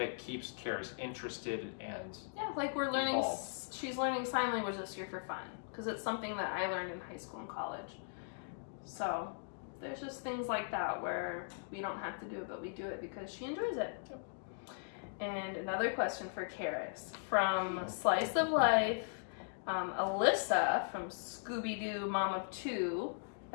keeps Caris interested and yeah, like we're learning, involved. she's learning sign language this year for fun, because it's something that I learned in high school and college. So there's just things like that where we don't have to do it, but we do it because she enjoys it. And another question for Caris from Slice of Life, Alyssa from Scooby-Doo Mom of 2,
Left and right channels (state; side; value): silent; right; digital silence